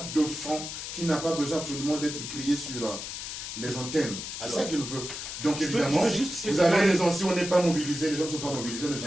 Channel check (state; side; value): noise; left; hiss, 7 dB below the sound